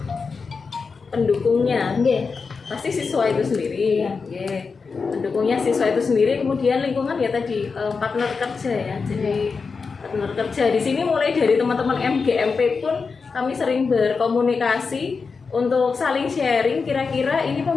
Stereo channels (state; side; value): quieter; right; 4.9 dB